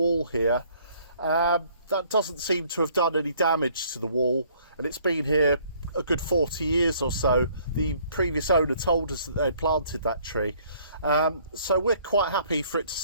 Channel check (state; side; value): inverted; both; correlation -0.61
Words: here, that doesn't seem to have done any damage to the wall, and it's been here a good 40 years or so. The previous owner told us that they'd planted that tree, so we're quite happy for it to